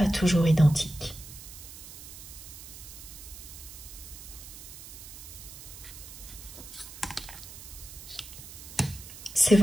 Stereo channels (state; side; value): noise; right; hiss, 14 dB below the sound